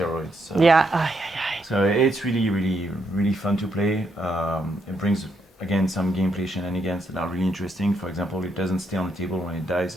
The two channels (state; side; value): normal; both; correlation 0.77